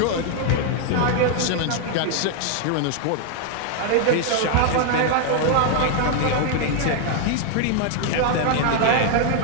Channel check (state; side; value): different; both; correlation 0.00